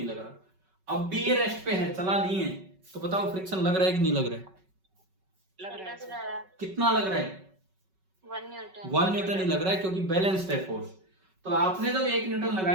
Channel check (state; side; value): late; left; 5.3 ms